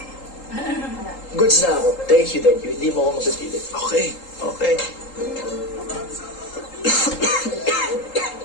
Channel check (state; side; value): late; right; 3.8 ms